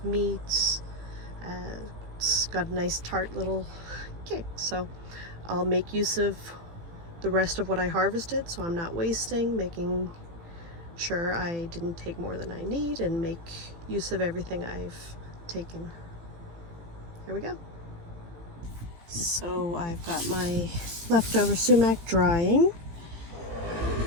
meats. It's got a nice tart little kick, so I'll make use of the rest of what I harvested, so I'm not wasting, making sure I didn't take more than I need, and make use of everything I've taken. Here we go. So I've got my leftover sumac drying.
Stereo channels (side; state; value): left; late; 18 ms